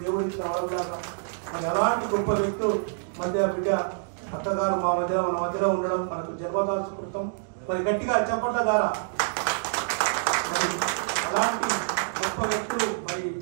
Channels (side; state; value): left; silent; digital silence